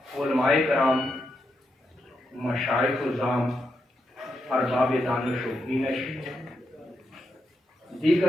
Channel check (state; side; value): normal; both; correlation 0.83